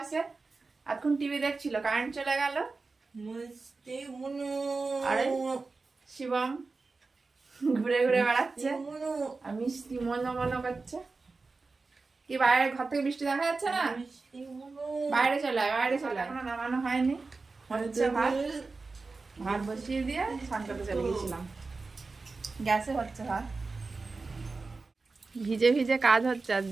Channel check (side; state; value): left; quieter; 4.0 dB